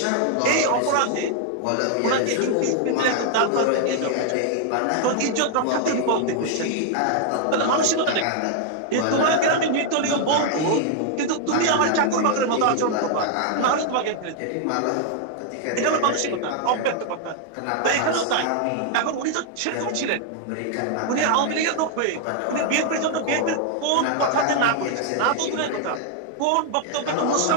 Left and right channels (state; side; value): different; both; correlation 0.00